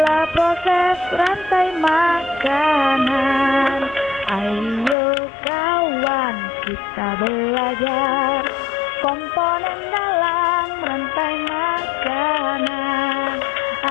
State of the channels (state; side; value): drops out; right; at 5.0 s